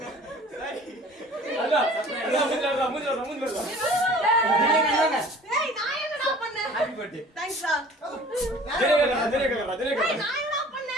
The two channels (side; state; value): both; normal; correlation 0.47